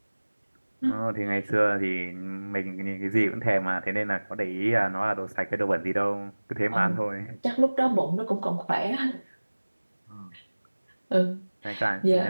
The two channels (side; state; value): both; inverted; correlation -1.00